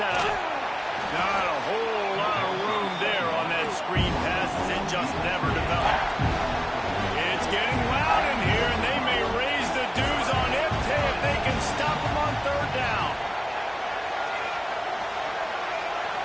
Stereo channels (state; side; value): identical; both; correlation 1.00